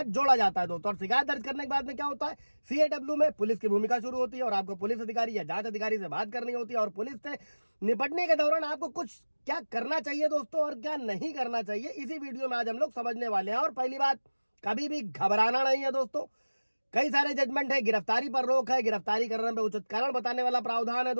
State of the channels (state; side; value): inverted; both; correlation -1.00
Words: जोड़ा जाता है दोस्तों। और शिकायत दर्ज करने के बाद में क्या होता है, CAW में पुलिस की भूमिका शुरू होती है और आपको पुलिस अधिकारी या जांच अधिकारी से बात करनी होती है, और पुलिस से निपटने के दौरान आपको कुछ क्या करना चाहिए दोस्तों और क्या नहीं करना चाहिए, इसी वीडियो में आज हम लोग समझने वाले हैं। और पहली बात, कभी भी घबराना नहीं है दोस्तों। कई सारे जजमेंट है, गिरफ्तारी पर रोक है, गिरफ्तारी करने में उचित कारण बताने वाला प्रावधान है